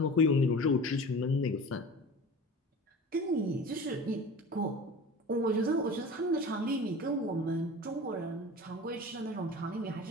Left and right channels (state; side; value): normal; both; correlation 0.36